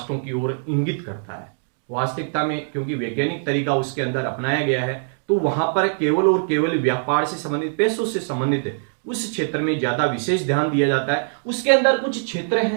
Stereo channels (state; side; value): silent; left; digital silence